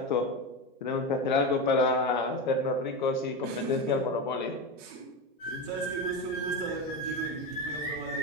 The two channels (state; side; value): normal; both; correlation 0.17